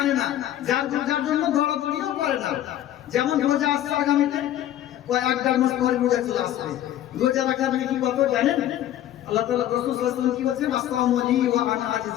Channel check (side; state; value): right; quieter; 12.2 dB